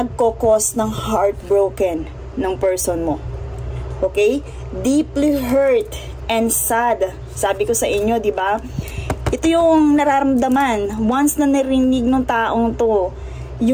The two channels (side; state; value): both; identical; correlation 1.00